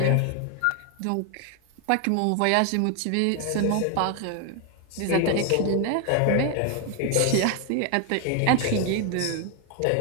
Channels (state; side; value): different; both; correlation 0.01